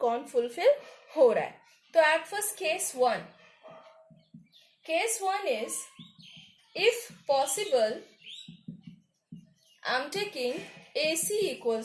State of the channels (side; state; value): both; identical; correlation 1.00